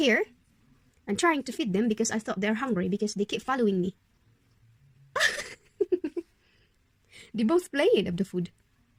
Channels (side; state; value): both; identical; correlation 1.00